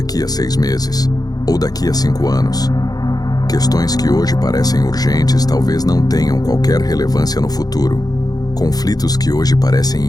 a 6 meses? Ou daqui a 5 anos? Questões que hoje parecem urgentes talvez não tenham qualquer relevância no futuro. Conflitos que hoje parecem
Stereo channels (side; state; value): right; late; 0.19 ms